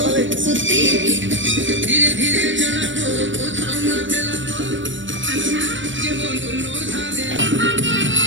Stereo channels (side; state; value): left; late; 0.55 ms